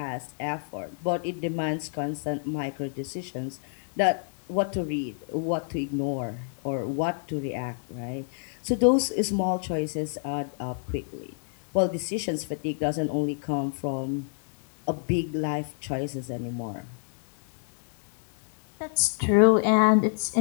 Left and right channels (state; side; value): silent; right; digital silence